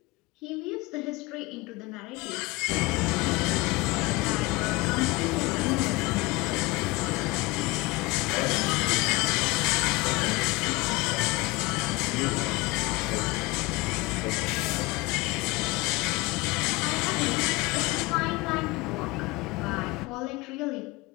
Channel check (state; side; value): quieter; right; 23.1 dB